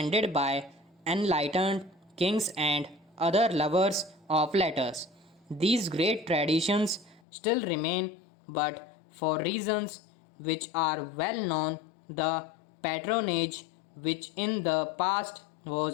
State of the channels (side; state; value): right; drops out; at 7.2 s